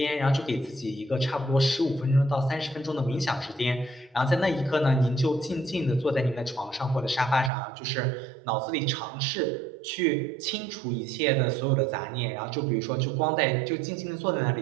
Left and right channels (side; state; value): left; drops out; at 7.5 s